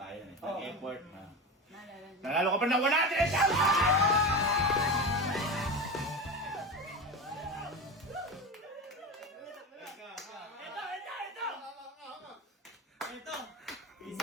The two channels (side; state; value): both; normal; correlation 0.23